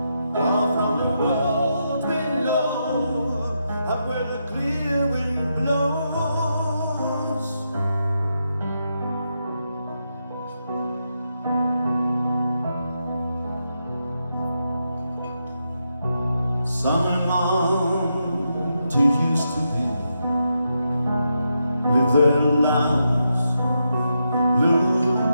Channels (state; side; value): inverted; both; correlation -0.84